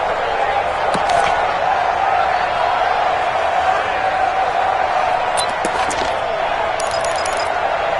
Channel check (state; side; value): identical; both; correlation 1.00